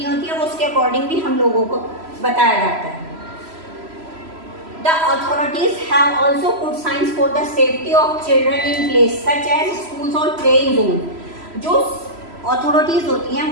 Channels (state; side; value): late; left; 3.0 ms